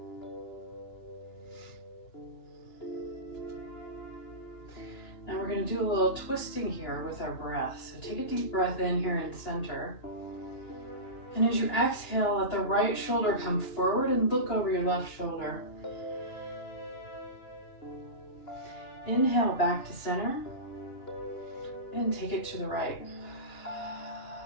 Now we're going to do a little twisting here with our breath. So take a deep breath in here in center. And as you exhale, let the right shoulder come forward and look over your left shoulder. Inhale back to center and take it to the right.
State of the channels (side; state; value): right; late; 2.9 ms